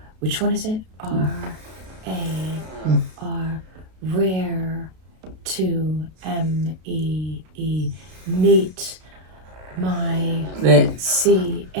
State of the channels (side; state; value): left; late; 32 ms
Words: Which one is it? R-A-R. Rare. To M-E-E. Neat. My